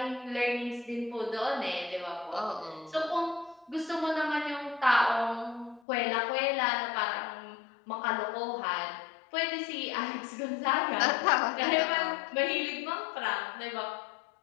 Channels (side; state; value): right; drops out; at 5.8 s